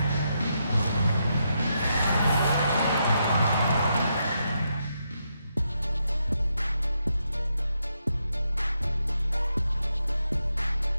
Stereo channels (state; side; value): inverted; both; correlation -0.82